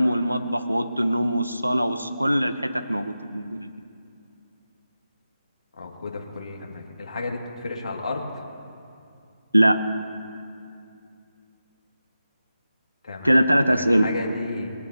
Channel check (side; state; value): both; inverted; correlation -0.92